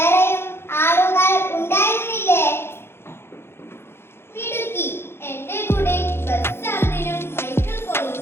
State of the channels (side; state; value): right; late; 0.12 ms